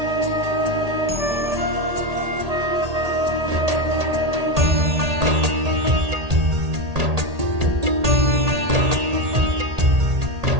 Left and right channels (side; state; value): left; late; 1.8 ms